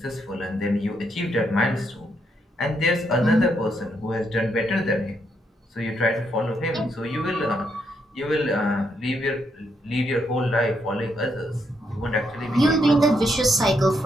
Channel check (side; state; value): both; normal; correlation 0.77